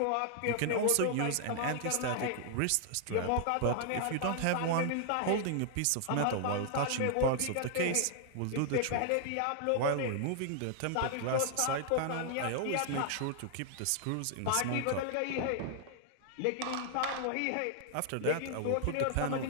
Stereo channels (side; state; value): both; different; correlation -0.01